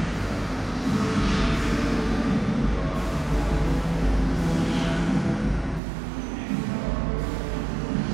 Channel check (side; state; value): left; drops out; at 5.8 s